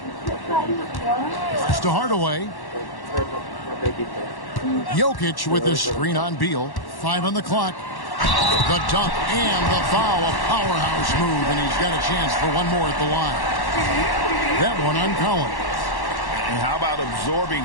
Pass to Hardaway. Jokic with his screen on Beal. 5 on the clock. The dunk and the foul. A powerhouse move, and he's got a chance for one more at the line. That one on Collins. And how about absorbing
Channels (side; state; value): right; late; 1.1 ms